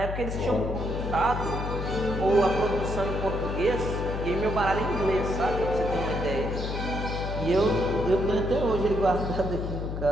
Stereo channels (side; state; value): left; noise; hum, 4 dB below the sound